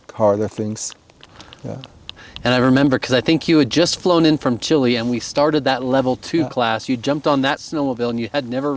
harder things. Yeah. And I remember, because I think you had just flown in from Chile and we started that level 2 class. You jumped on that snowmobile and you had never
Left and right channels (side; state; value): both; identical; correlation 1.00